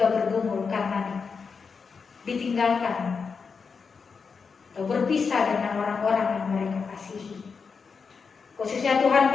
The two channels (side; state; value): right; quieter; 5.4 dB